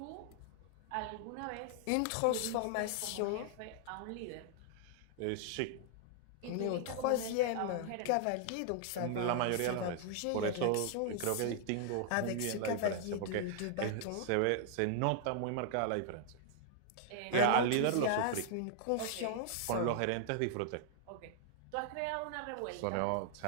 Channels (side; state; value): both; different; correlation -0.01